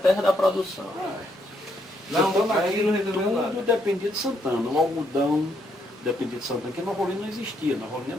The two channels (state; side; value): normal; both; correlation 0.74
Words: da produção. Santana aqui tudo dependia de Santana. O algodão dependia de Santana, porque Nova Olinda não existia. Nova Olinda